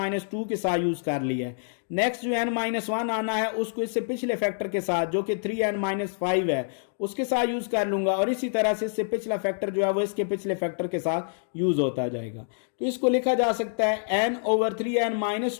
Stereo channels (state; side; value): silent; right; digital silence